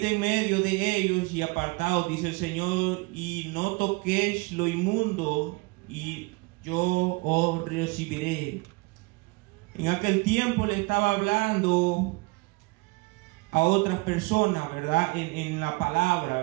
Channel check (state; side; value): quieter; left; 26.2 dB